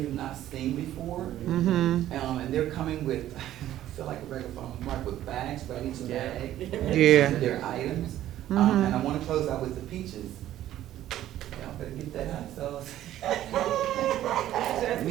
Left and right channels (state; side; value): quieter; left; 12.9 dB